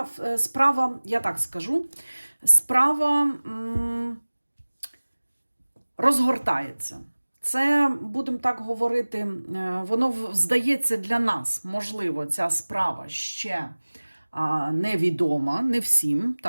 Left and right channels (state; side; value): inverted; both; correlation -1.00